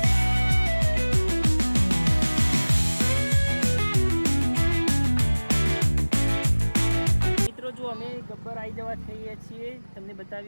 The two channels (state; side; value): inverted; both; correlation -1.00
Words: જો અમે ગબ્બર આવી જવા થઈએ છીએ, તમને